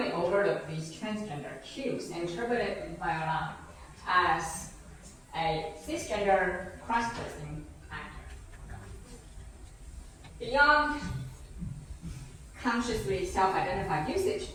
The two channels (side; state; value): both; identical; correlation 1.00